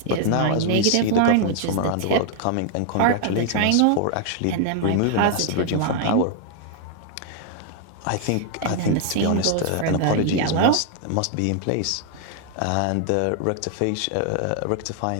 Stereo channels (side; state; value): both; different; correlation 0.00